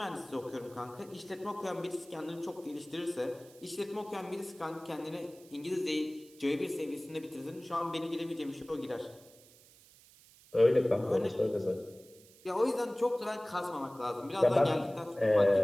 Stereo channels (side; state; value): right; noise; hiss, 25 dB below the sound